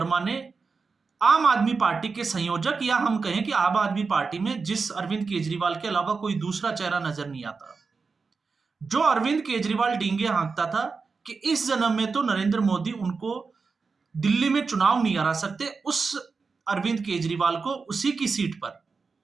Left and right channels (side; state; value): left; quieter; 4.7 dB